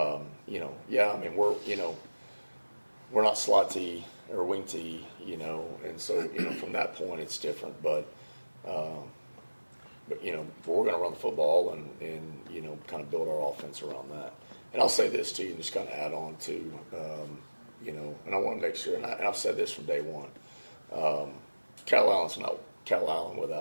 mean we're not slot T or wing T, and so from that point it's different. But we're going to run the football and kind of build our offense around that. And I'll say this too, and just kind of add on to and I want to make sure, and I've said this from day one. Calallen's not Calallen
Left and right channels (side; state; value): both; inverted; correlation -1.00